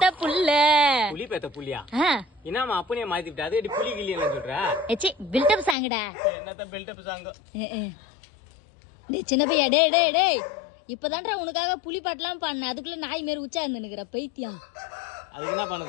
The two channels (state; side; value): drops out; right; at 5.8 s